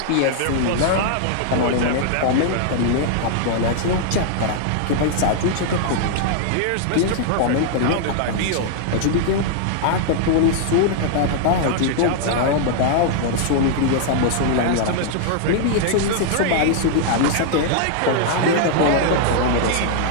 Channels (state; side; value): different; both; correlation -0.01